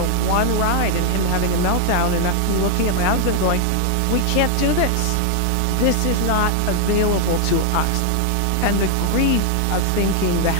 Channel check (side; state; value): both; different; correlation 0.01